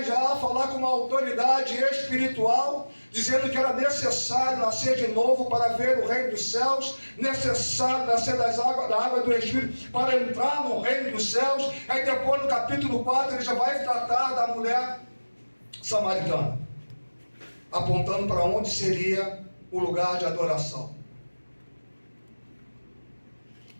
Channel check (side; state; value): both; inverted; correlation -1.00